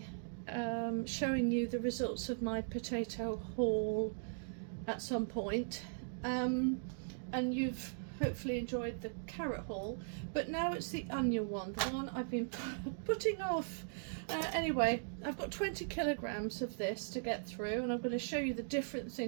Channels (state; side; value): silent; left; digital silence